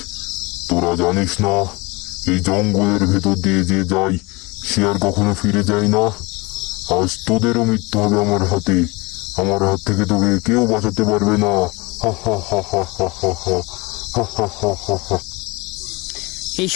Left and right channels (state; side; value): quieter; right; 25.3 dB